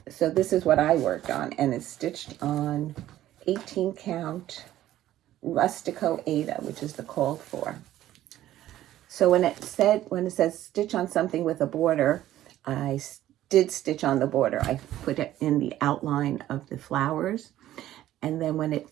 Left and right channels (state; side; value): quieter; left; 13.5 dB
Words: So this is what I worked on, and it's stitched on 18 count Rustico Aida, which is the called for. So when it says stitch on something with a border, I did stitch on the border. I put it in the outline of the flowers. And then when it